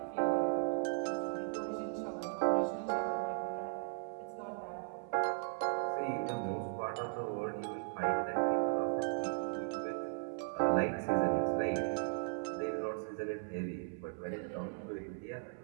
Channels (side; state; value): left; silent; 53 dB below the other